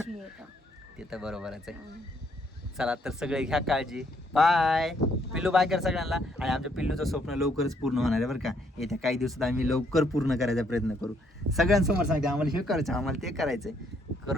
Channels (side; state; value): both; normal; correlation 0.70